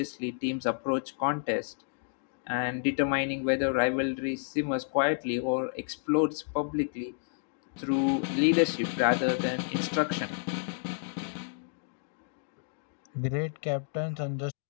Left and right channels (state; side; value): silent; right; digital silence